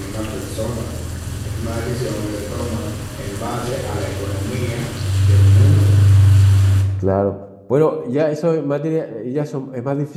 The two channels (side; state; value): both; identical; correlation 1.00